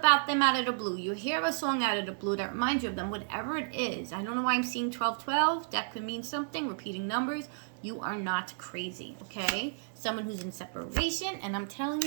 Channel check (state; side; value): silent; left; 56 dB below the other